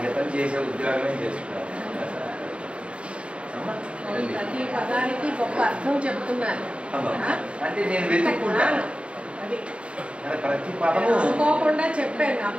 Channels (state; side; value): late; left; 0.059 ms